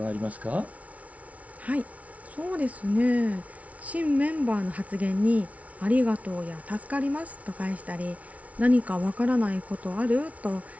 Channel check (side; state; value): left; late; 0.067 ms